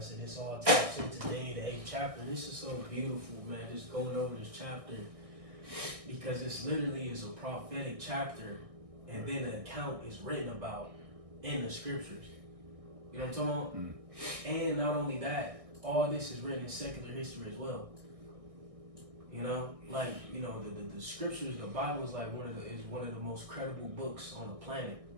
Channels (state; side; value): late; left; 1.6 ms